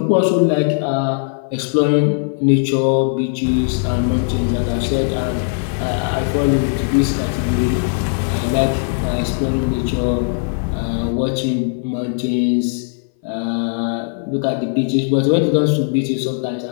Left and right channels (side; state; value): right; silent; 60 dB below the other